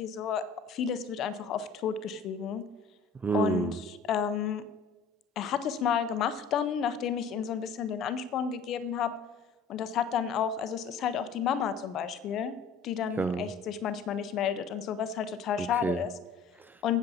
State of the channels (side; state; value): right; quieter; 5.2 dB